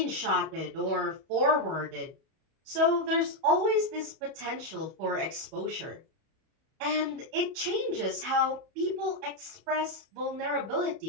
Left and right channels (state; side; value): late; left; 31 ms